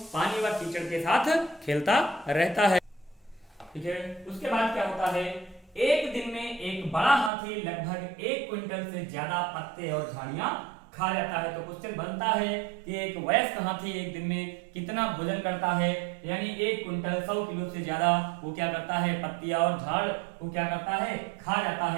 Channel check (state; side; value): drops out; left; at 7.3 s